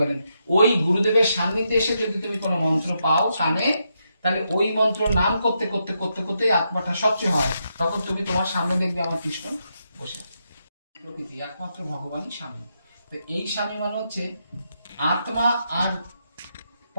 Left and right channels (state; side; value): inverted; both; correlation -0.82